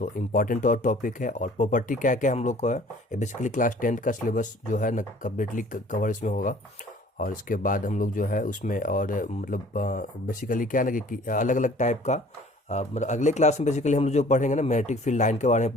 इम्पॉर्टेंट और टॉपिक है, और प्रॉपर्टी क्या क्या हम लोग को है, ये बेसिकली क्लास 10th का सिलेबस जो है ना कम्प्लीटली कवर इसमें होगा। और इसके बाद हम लोग जो है उसमें और मतलब बेसिकली क्या है ना कि अलग अलग टाइप का मतलब अगले क्लास में बेसिकली हम लोग जो पढ़ेंगे ना मैग्नेटिक फील्ड लाइन के बारे में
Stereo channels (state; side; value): normal; both; correlation 0.51